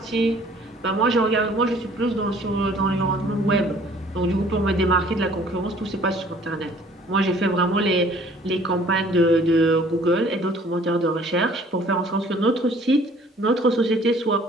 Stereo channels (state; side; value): normal; both; correlation 0.55